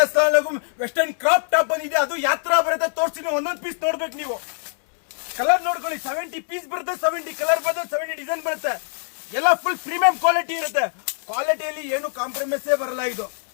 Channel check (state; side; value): silent; right; 63 dB below the other